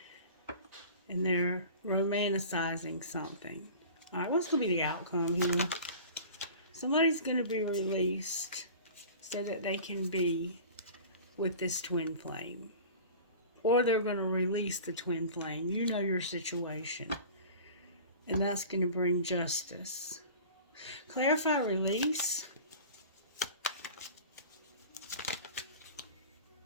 And they're romanticizing something. Alright, what's going to be the outcome here? Somebody's going to be released so that they can be with this twin flame. Or they're going to release the twin flame. You know your situation. And that's going to bring justice. Clarify release.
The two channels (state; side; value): inverted; both; correlation -0.39